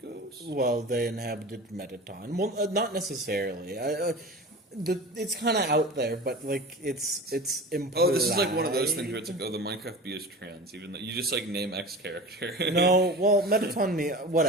ghost? Well, they inhabited Metaton. Well, not necessarily. It's kind of out there, but it's implied. Oh, this is like one of those things where it's like, oh, the Minecraft bee is trans, even though you just name X character. No, well, Metaton,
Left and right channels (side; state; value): both; normal; correlation 0.34